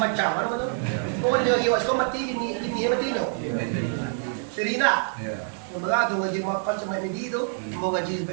ano betul. Pokok dia iwas ko mati bini mati nyo. Serina. Mga tu ngaji mapan sa may medido, mo ngaji sa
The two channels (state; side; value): silent; left; digital silence